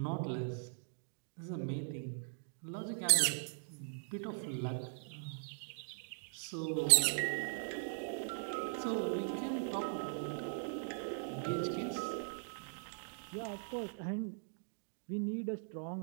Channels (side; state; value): left; silent; digital silence